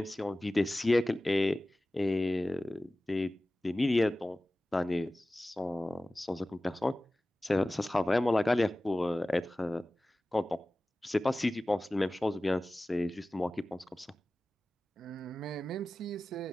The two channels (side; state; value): both; normal; correlation 0.96